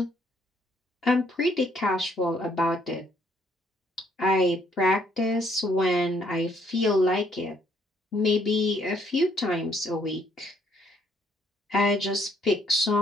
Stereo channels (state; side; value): normal; both; correlation 0.67